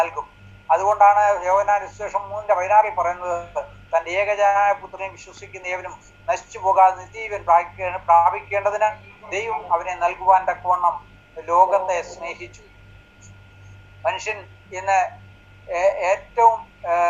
അതുകൊണ്ടാണ് യോഹന്നാൻ സുവിശേഷം 3:16 പറയുന്നത്, തൻ്റെ ഏകജാതനായ പുത്രനെ വിശ്വസിക്കുന്ന ഏവനും നശിച്ചു പോകാതെ നിത്യജീവൻ പ്രാപിക്കേണ്ടതിന് ദൈവം അവനെ നൽകുവാൻ തക്കവണ്ണം ലോകത്തെ സ്നേഹിച്ചു. മനുഷ്യൻ ഇന്ന് ഏറ്റവും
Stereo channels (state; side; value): identical; both; correlation 1.00